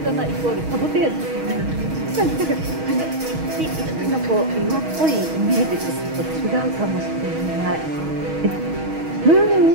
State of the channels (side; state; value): left; late; 6.3 ms